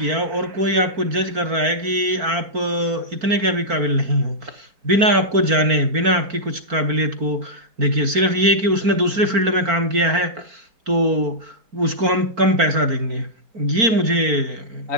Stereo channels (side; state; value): left; late; 4.4 ms